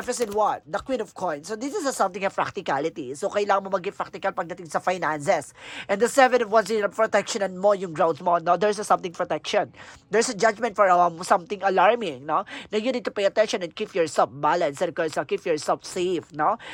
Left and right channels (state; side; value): identical; both; correlation 1.00